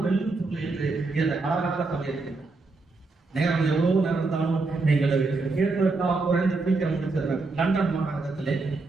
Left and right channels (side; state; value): left; quieter; 3.6 dB